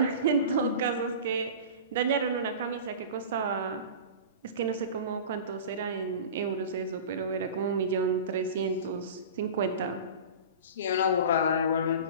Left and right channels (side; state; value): both; inverted; correlation -0.34